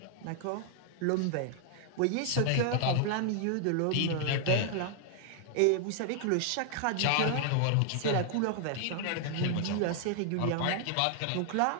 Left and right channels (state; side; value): different; both; correlation 0.00